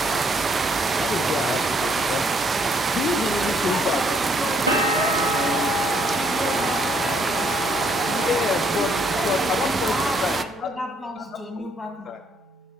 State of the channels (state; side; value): normal; both; correlation 0.69